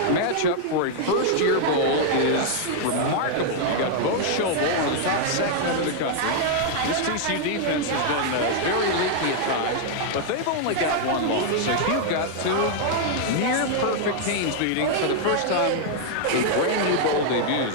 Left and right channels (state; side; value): different; both; correlation 0.00